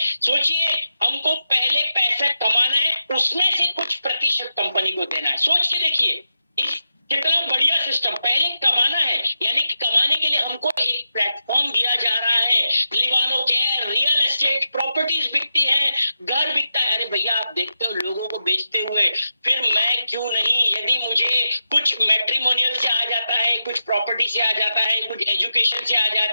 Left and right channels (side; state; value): both; inverted; correlation -0.88